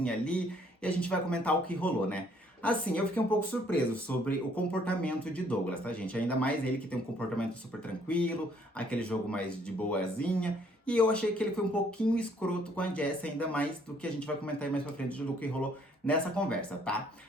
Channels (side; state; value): both; normal; correlation 0.64